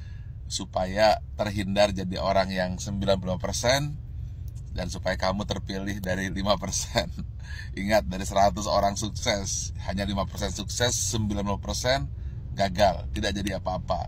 supaya terhindar jadi orang yang 90% dan supaya kamu terpilih dari 5%. Ingat, dari 100 orang sukses, hanya 5% sukses, 90% gagal, tidak jadi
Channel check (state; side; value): identical; both; correlation 1.00